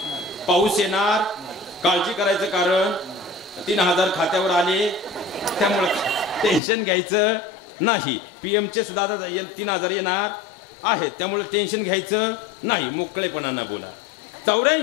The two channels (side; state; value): right; drops out; at 6.6 s